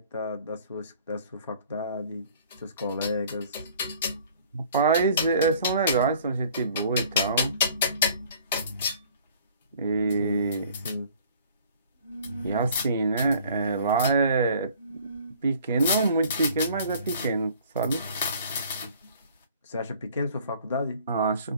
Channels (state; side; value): inverted; both; correlation -0.53